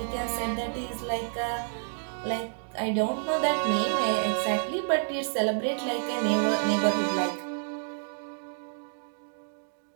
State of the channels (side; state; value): left; silent; digital silence